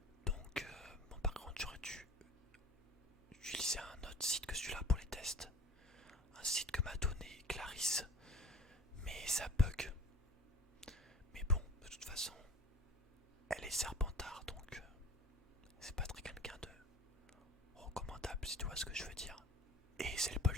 Bon, par contre, j'aurais dû utiliser un autre site que celui-là pour les tests. Un site que m'a donné Clarisse, mais ça bug. Mais bon, de toute façon, elle est Serpentard, donc c'est pas très quelqu'un de recommandable, si tu vois ce que je veux dire. Et c'est le Paul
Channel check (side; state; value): both; normal; correlation 0.44